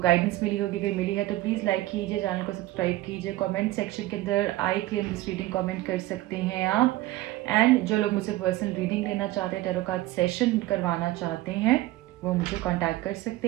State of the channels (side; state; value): left; quieter; 16.9 dB